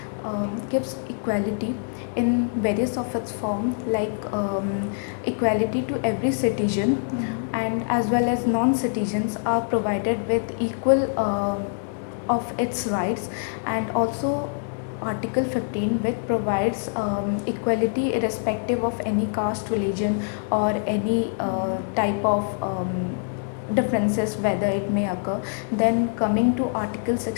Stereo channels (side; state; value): right; silent; digital silence